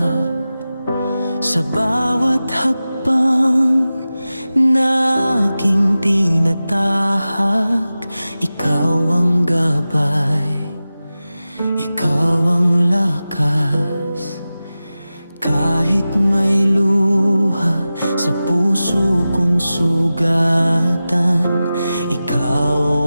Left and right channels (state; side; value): inverted; both; correlation -0.95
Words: Sa bawat hakbang na aking tinatahak, ikaw ang gabay, ikaw ang lakas. Kahit may luha sa puso kong sugatan, ikaw